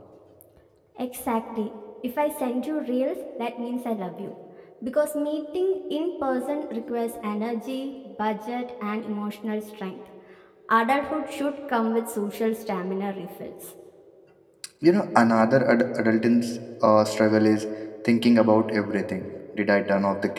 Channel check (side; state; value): both; identical; correlation 1.00